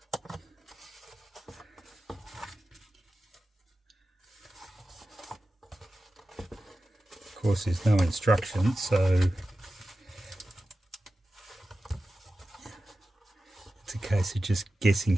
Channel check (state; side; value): normal; both; correlation 0.94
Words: Of course there's no instructions, so it's a case of just guessing